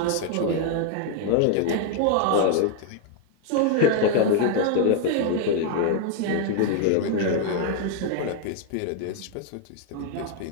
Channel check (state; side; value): different; both; correlation 0.01